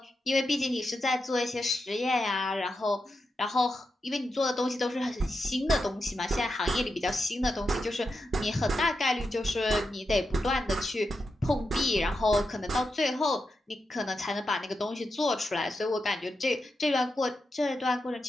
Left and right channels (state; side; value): normal; both; correlation 0.87